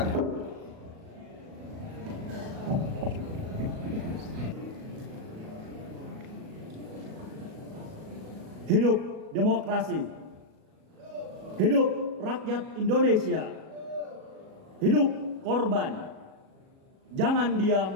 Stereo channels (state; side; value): late; left; 37 ms